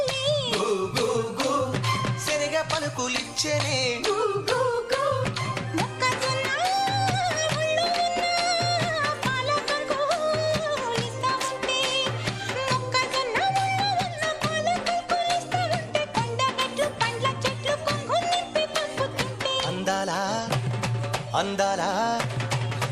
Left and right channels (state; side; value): identical; both; correlation 1.00